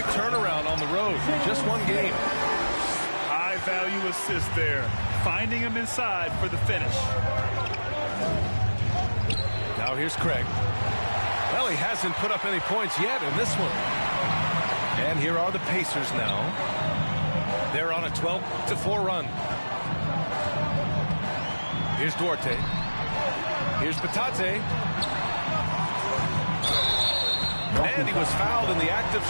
turnaround on the road. Just one game. High-value assist there. Finding him inside for the finish. Now here's Craig. Well, he hasn't put up any points yet in this one. And here are the Pacers now. They're on a 12-4 run. Here's Duarte. Here's Batadze. And he was fouled in the act of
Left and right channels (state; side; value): inverted; both; correlation -1.00